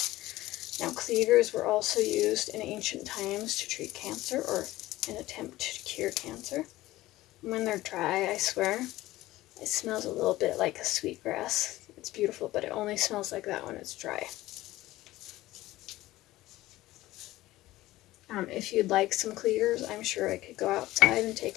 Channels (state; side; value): quieter; right; 16.9 dB